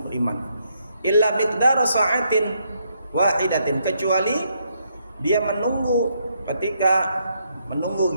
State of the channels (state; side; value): inverted; both; correlation -0.76